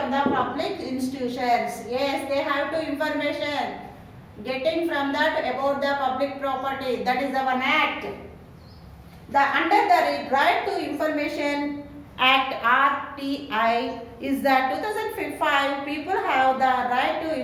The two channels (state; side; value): identical; both; correlation 1.00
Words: the public institutions. Yes, they have to information getting from that about the public property. That is the one act. Under the Right to Information Act RTI is that 2005 people have the right to